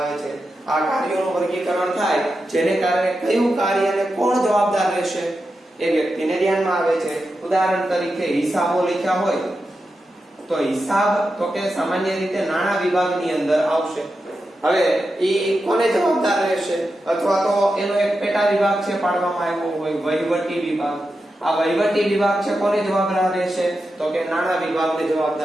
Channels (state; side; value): normal; both; correlation 0.89